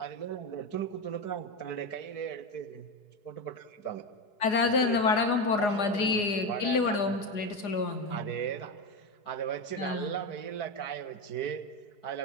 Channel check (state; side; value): late; right; 4.9 ms